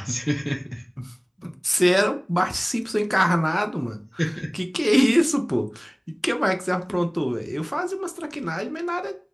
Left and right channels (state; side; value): identical; both; correlation 1.00